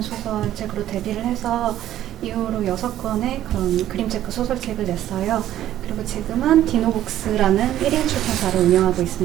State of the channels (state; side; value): quieter; left; 12.6 dB